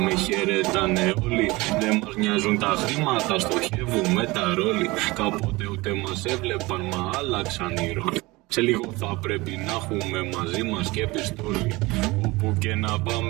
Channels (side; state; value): left; quieter; 22.1 dB